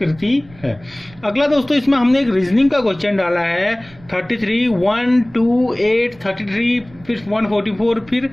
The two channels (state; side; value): noise; right; rumble, 24 dB below the sound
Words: है। अगला दोस्तों इसमें हमने एक रीजनिंग का क्वेश्चन डाला है 33, 1, 2, 8, 33 फिर 144 फिर